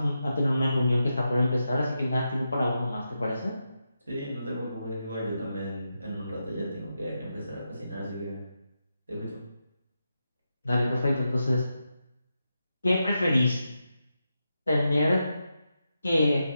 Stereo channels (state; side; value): inverted; both; correlation -0.87